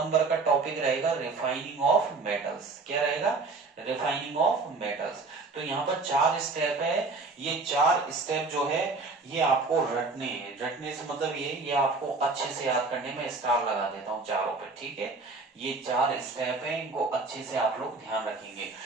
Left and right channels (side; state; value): left; quieter; 3.8 dB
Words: का टॉपिक रहेगा रिफाइनिंग ऑफ मेटल्स। क्या रहेगा, रिफाइनिंग ऑफ मेटल्स। तो यहाँ पर 4 स्टेप है, ये 4 स्टेप जो है ये आपको रटने हैं, रटने से मतलब ये आपको अच्छे से याद करने में स्टार लगा देता हूँ चारों पे। ठीक है, ये 4 स्टेप है, इनको अच्छे से आप लोग ध्यान रखेंगे।